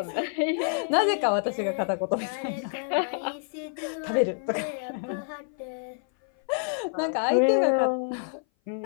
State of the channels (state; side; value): silent; right; 57 dB below the other